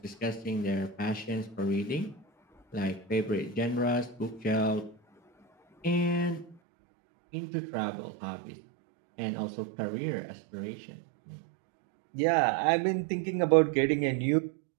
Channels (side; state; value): left; drops out; at 6.6 s